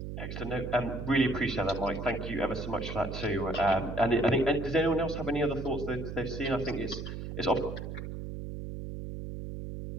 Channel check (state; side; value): noise; right; hum, 7 dB below the sound